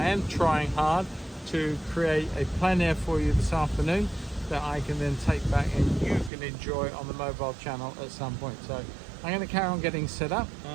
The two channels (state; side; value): drops out; left; at 6.3 s